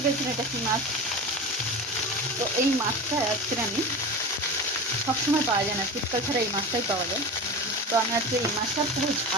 পেরেছেন এটা কী মাছ। তো এই মাছটা আজকে আমি সবসময় পাওয়া যায় না, শীতকাল ছাড়া এই মাছটাই পাওয়া যায়। তো আমি আজকে এই মাছটা পুরো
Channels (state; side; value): normal; both; correlation 0.29